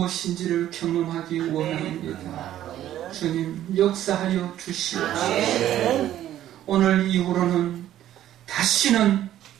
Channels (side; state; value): left; quieter; 12.3 dB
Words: 경험하기 원합니다. 주님, 역사하여 주시옵소서. 오늘 이후로는 다시는